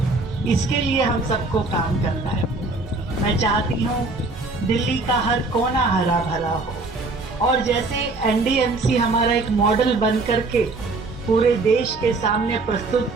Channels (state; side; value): quieter; left; 3.4 dB